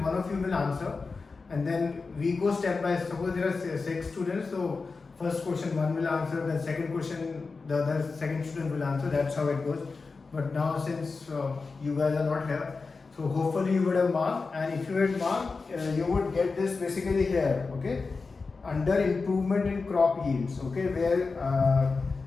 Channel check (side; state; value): right; quieter; 4.3 dB